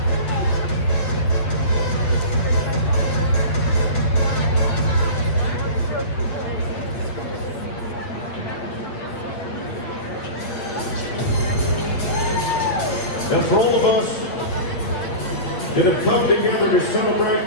And for all of us that have come together to celebrate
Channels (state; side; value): late; right; 8.4 ms